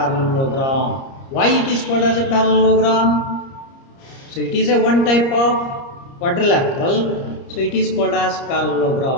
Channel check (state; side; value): late; right; 30 ms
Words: Why it is called as a parallelogram? So it is a one type of quadrilateral. So it is called as